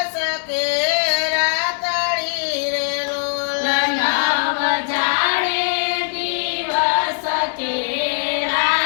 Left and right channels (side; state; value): right; silent; digital silence